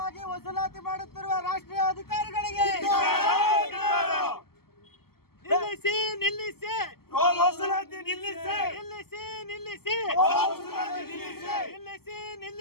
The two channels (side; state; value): right; late; 0.95 ms